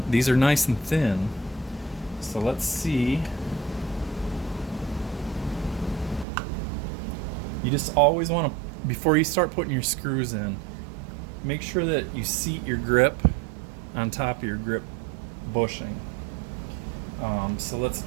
these are nice and thin. So let's see. You just always want to, before you start putting your screws in, make sure that you seat your grip on top of your grip bushing. So let's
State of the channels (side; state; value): left; drops out; at 6.2 s